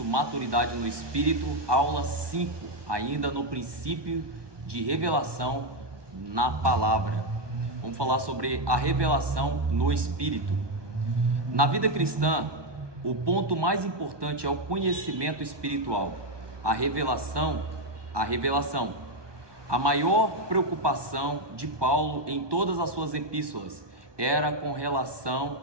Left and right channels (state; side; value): late; left; 1.2 ms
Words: Maturidade no Espírito, aula 5, ainda no princípio de revelação na palavra. Vamos falar sobre a revelação no Espírito. Na vida cristã, o ponto mais importante é o conhecimento espiritual, a revelação. A maior preocupação de Paulo em todas as suas epístolas era com relação